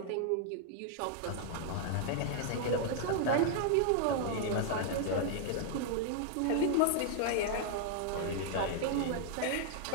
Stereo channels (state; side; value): different; both; correlation 0.00